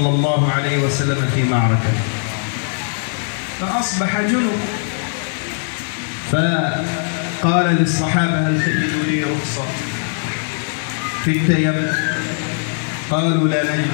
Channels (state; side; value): silent; right; digital silence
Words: الله عليه وسلم في معركة، فأصبح جنب، فقال للصحابة هل تجد لي رخصة في التيمم؟ قالوا لا نجد